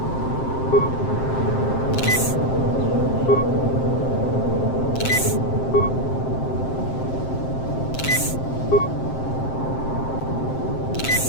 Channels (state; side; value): late; right; 7.6 ms